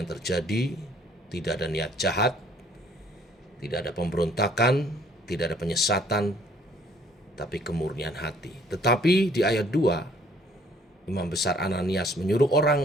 terjadi tidak ada niat jahat, tidak ada pemberontakan, tidak ada penyesatan, tapi kemurnian hati. Tetapi di ayat 2, Imam Besar Ananias menyuruh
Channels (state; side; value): normal; both; correlation 0.60